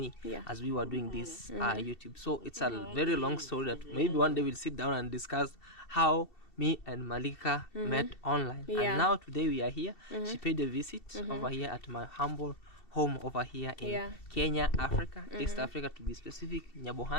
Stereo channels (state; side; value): late; right; 2.7 ms